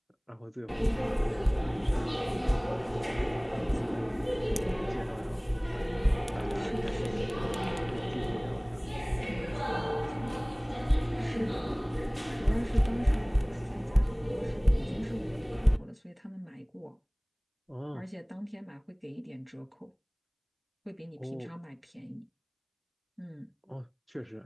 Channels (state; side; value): identical; both; correlation 1.00